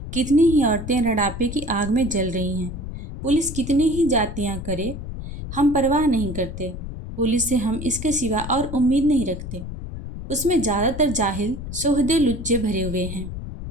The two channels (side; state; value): left; noise; rumble, 8 dB below the sound